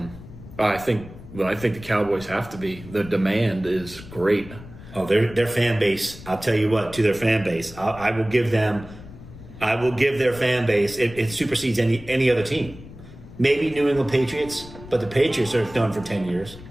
I think the Cowboys have to be. The demand is great. Oh, their fan base. I'll tell you what. To their fan base, I will give their fan base. It supersedes any other team. Maybe New England Patriots, but the Patriots are done for 10 years.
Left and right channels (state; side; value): noise; left; rumble, 16 dB below the sound